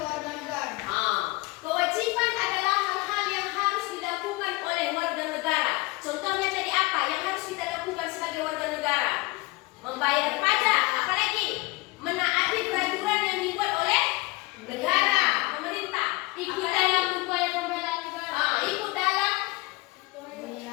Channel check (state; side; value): quieter; right; 23.2 dB